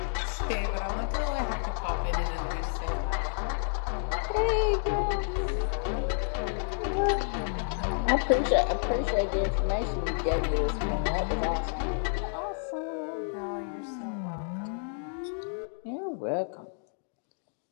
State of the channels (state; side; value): silent; right; 58 dB below the other